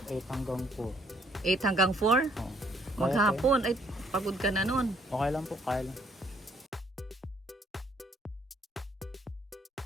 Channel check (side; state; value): both; normal; correlation 0.66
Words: 8 hanggang 4. 8 hanggang 4? Oo. Maghapon. Ay, pagod ka na nun. Okay lang po, kaya lang.